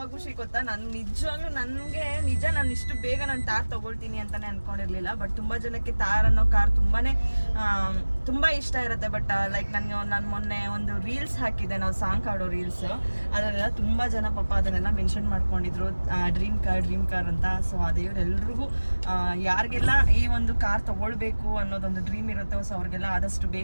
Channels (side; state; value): both; inverted; correlation -1.00